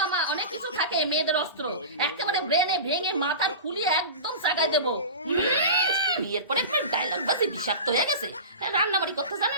অনেক কিছু থাকে, মেয়েদের অস্ত্র। একেবারে ব্রেনে ভেঙে মাথার খুলিয়ে একদম চাগায় দেবো। বিয়ের পরে ডায়লগ বাজি বিষাক্ত হয়ে গেছে, রান্নাবাড়ি করতে জানে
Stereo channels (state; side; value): inverted; both; correlation -0.31